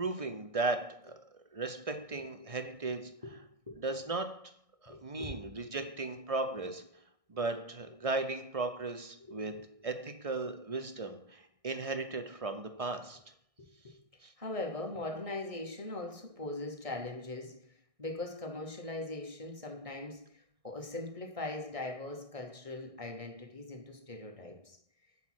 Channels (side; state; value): left; late; 1.6 ms